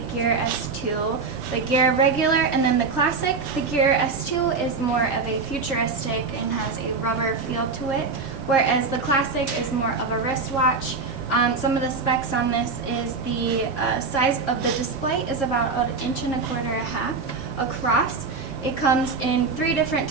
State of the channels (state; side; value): quieter; left; 4.4 dB